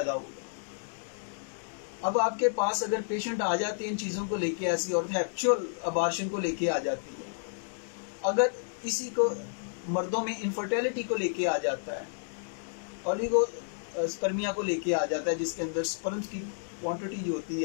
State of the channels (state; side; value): silent; right; digital silence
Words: होगा। अब आपके पास अगर पेशेंट आ जाते हैं इन चीजों को लेके, ऐसी और एक्चुअल अबार्शन को लेके आ जाती है, अगर इसी को मर्दों में इनफर्टिलिटी को लेके आ जाता है, ओलिगो स्पर्मिया को लेके आ जाता है, जिसके अंदर स्पर्म्स की क्वांटिटी जो होती